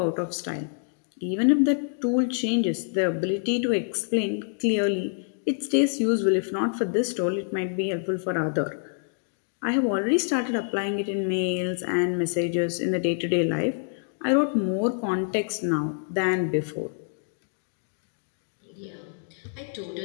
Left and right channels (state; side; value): silent; right; digital silence